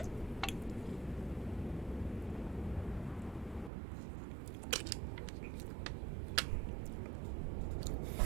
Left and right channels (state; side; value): drops out; left; at 3.7 s